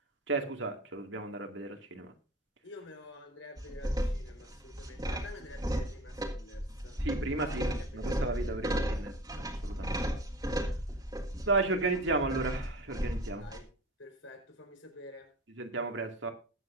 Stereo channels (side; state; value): both; normal; correlation 0.38